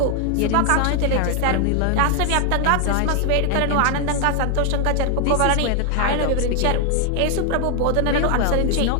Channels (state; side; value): different; both; correlation 0.00